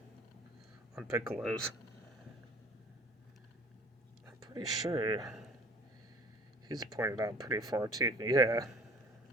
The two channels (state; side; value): normal; both; correlation 0.49